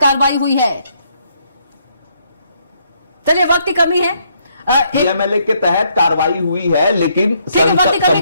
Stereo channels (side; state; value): both; inverted; correlation -0.72